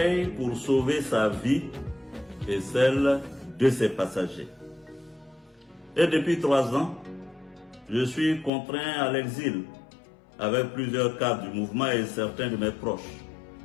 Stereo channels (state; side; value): drops out; right; at 8.5 s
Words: pour sauver sa vie et celle de ses passagers. Et depuis 3 ans, je suis contraint à l'exil avec plusieurs cadres du mouvement et certains de mes proches.